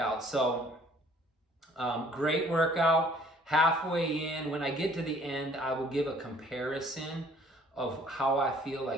So great workout. Halfway in, when I get to the end, I will give a comparison of how I feel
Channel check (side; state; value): both; normal; correlation 0.57